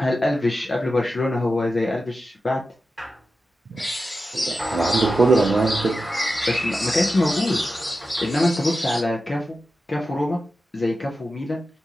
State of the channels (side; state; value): both; normal; correlation 0.91